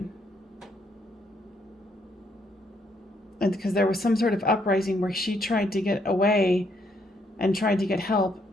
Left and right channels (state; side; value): normal; both; correlation 0.72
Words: And because there was some sort of uprising where she tried to get away and tried to get help,